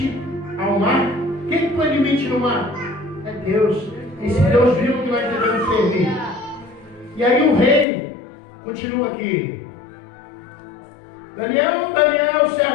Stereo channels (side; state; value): right; drops out; at 7.9 s